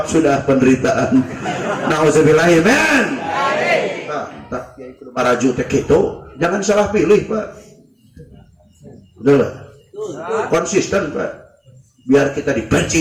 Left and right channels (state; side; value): identical; both; correlation 1.00